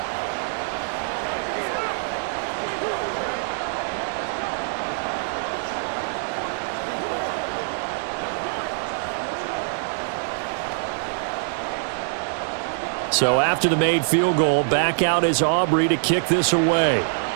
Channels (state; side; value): silent; left; digital silence